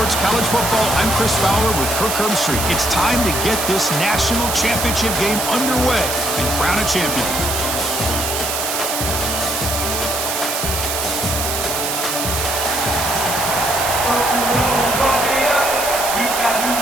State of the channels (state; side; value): noise; right; hiss, 2 dB below the sound